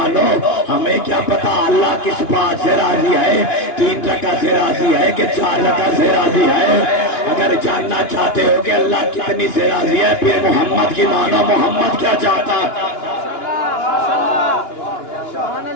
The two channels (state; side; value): late; right; 2.9 ms